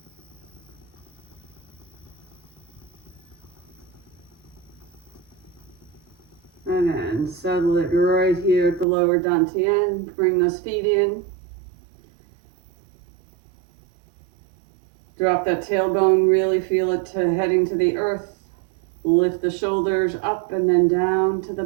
And then settle it right here at the lower dantian. Bring those feet in. Drop that tailbone, really feel it heading to the earth. Lift the shoulders up and then down to the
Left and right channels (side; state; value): left; drops out; at 8.8 s